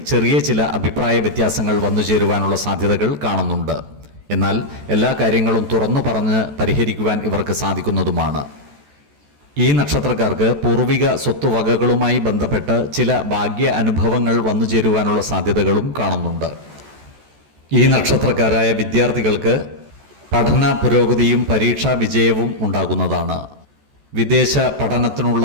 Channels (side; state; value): left; late; 14 ms